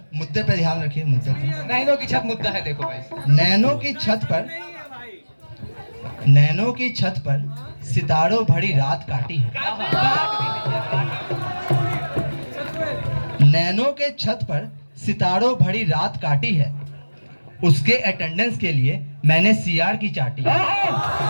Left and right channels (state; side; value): inverted; both; correlation -1.00